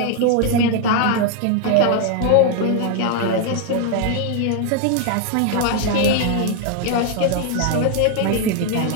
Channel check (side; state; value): both; different; correlation 0.00